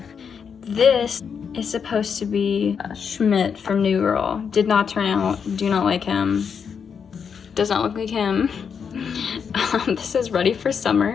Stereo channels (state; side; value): quieter; right; 6.7 dB